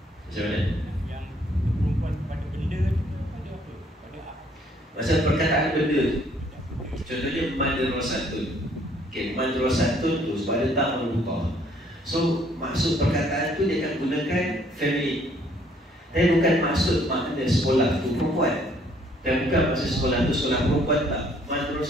Macam mana? Yang perempuan pada benda tu pada apa? Pada masa perkataan benda tu, contohnya madrasatun. Okay, madrasatun tu sebab ada tak merubah. So maksud perkataan tu dia akan gunakan feminin. Dan bukan maksud makna sekolah tu perempuan. Dan bukan maksud sekolah tu sekolah perempuan, tak.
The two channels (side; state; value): both; normal; correlation 0.63